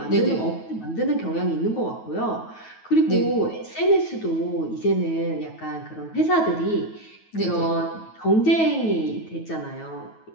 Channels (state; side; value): late; right; 9.3 ms